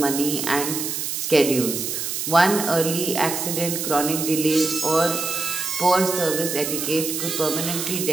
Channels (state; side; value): noise; right; hiss, 3 dB below the sound